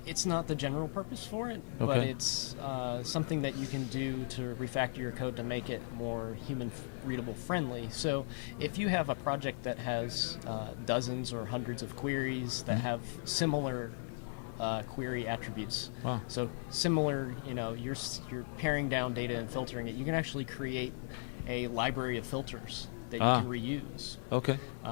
It's not the general purpose for it, but it's something that you can do to refactor your code to make it more human-readable friendly. So if you have a project that has dozens or hundreds of queries that have similar query attributes, so similar, you're paring down data and filtering it, you can actually create a library of filters that you can reuse. Okay.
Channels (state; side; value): silent; right; digital silence